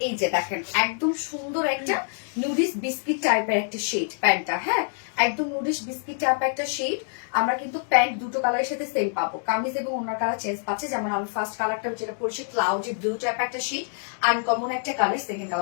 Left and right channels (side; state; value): right; silent; 61 dB below the other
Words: এই যে দেখেন একদম সুন্দর একটা নুডিস বিস্কিট টাইপের একটা শেড প্যান্টটা, হ্যাঁ একদম নুডিস বিস্কিট টাইপের একটা শেড। আমরা কিন্তু প্যান্ট দুটো কালারের সাথে সেম পাবো, কামিজ এবং ওনার কালার চেঞ্জ পাচ্ছে। যেমন আমি ফার্স্ট কালারটা যেটা পড়ছি ক্লাউডি ব্লু টাইপ একটা শেড, আনকমন একটা কালার, সেকেন্ড